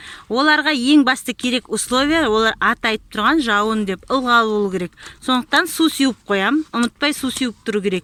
Оларға ең басты керек условия, олар аты айтып тұрған жауын деп ылғал болу керек. Сондықтан су сеуіп қоям, ұмытпай су сеуіп тұру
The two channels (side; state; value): both; identical; correlation 1.00